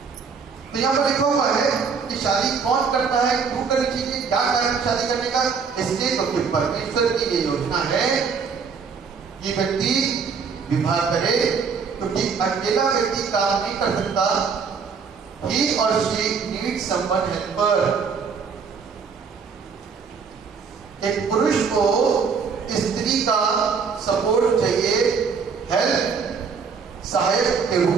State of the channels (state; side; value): quieter; left; 5.7 dB